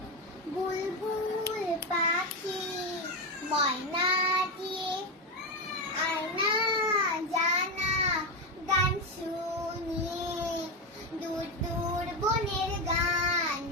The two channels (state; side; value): normal; both; correlation 0.11